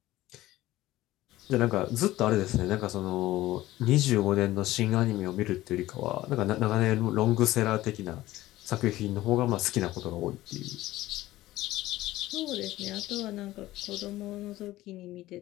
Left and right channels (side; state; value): right; quieter; 16.3 dB